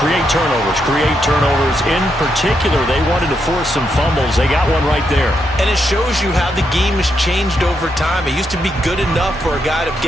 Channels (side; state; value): both; normal; correlation 0.80